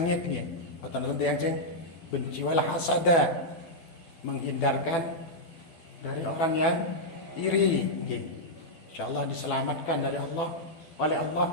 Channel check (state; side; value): late; right; 12 ms